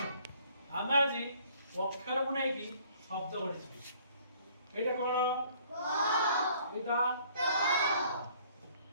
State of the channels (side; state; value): both; inverted; correlation -0.58